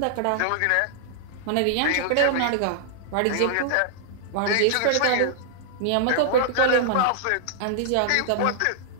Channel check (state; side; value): different; both; correlation -0.01